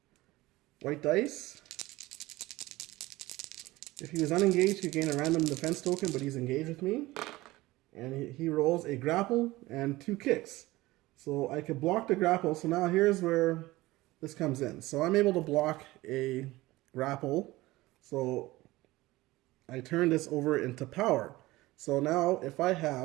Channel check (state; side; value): quieter; left; 18.9 dB